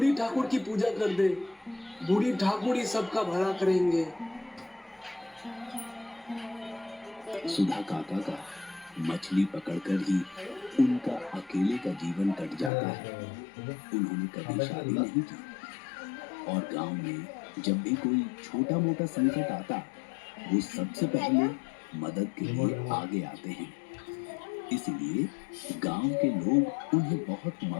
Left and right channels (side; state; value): right; drops out; at 12.7 s